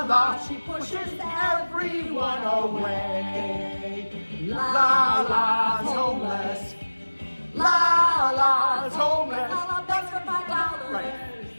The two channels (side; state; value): both; inverted; correlation -1.00